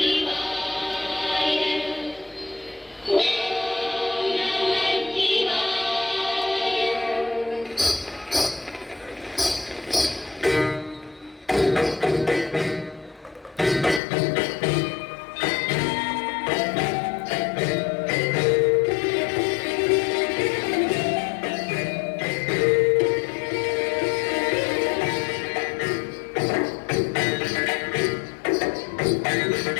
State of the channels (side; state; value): right; drops out; at 14.0 s